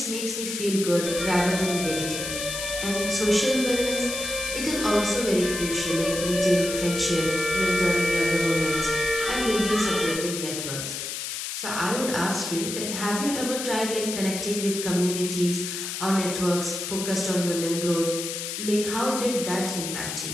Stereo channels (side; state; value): left; noise; hiss, 5 dB below the sound